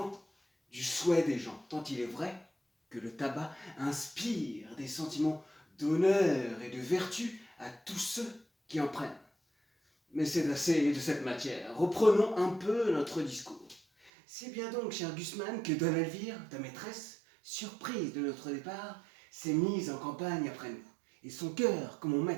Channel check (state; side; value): drops out; left; at 14.1 s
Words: du souhait des gens, tant il est vrai que le tabac inspire des sentiments d'honneur et de vertu à tous ceux qui en prennent. Mais c'est assez de cette matière. Reprenons un peu notre discours. C'est bien donc, cher Gusman, que Dona Elvire, ta maîtresse, surprise de notre départ, s'est mise en campagne après nous. Et son cœur, comme mon